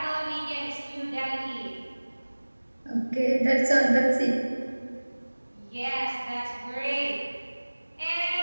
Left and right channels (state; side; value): inverted; both; correlation -1.00